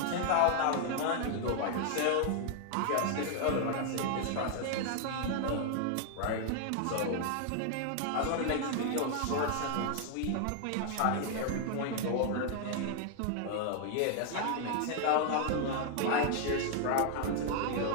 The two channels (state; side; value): different; both; correlation 0.00